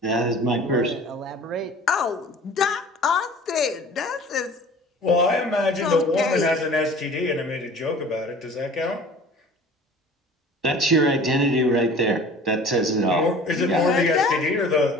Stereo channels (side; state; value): both; normal; correlation 0.45